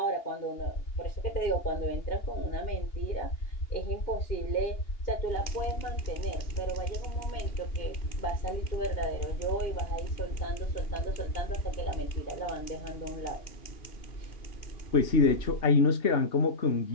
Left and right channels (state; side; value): late; right; 2.8 ms